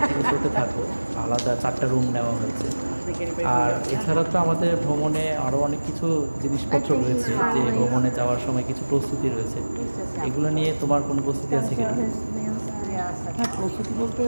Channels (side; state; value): both; inverted; correlation -1.00